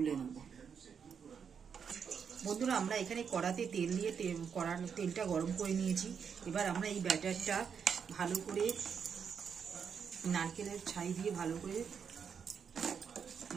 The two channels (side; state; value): left; quieter; 6.9 dB